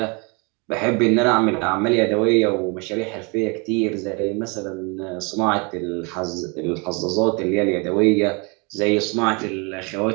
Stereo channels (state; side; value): quieter; left; 31.0 dB